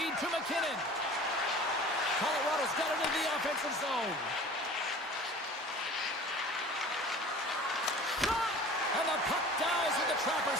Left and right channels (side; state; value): both; normal; correlation 0.43